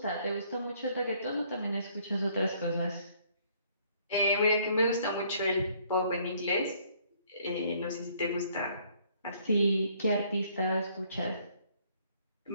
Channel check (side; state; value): both; inverted; correlation -0.63